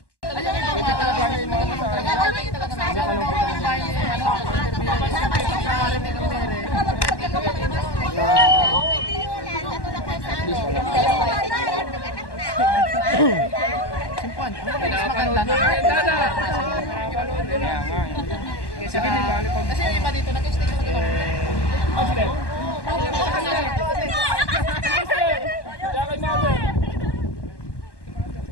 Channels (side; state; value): right; late; 1.1 ms